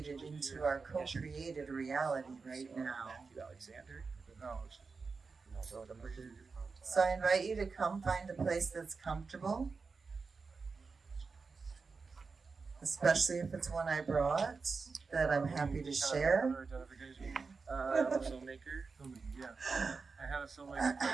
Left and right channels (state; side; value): quieter; left; 4.6 dB